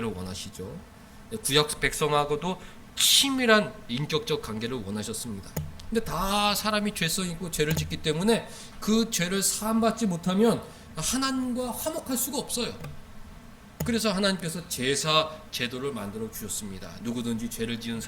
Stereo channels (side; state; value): both; identical; correlation 1.00